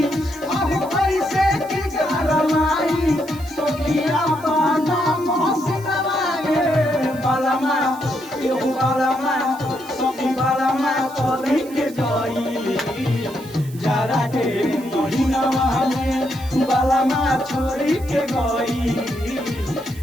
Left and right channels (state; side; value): noise; right; hiss, 20 dB below the sound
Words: अब पैसे की रमाई सोखिया पाना मोहसिनवा गे बलमा एहू बलमा सोखी बलमा छोड़ी के गई जाड़ा के महीनावा में बलमा छोड़ी के गई